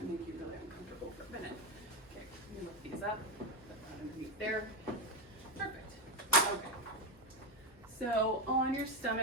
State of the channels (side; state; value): both; normal; correlation 0.12